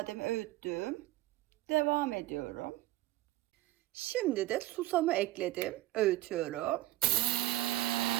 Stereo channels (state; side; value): quieter; left; 16.7 dB